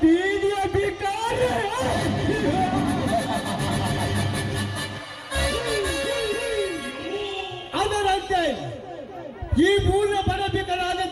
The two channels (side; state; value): both; identical; correlation 1.00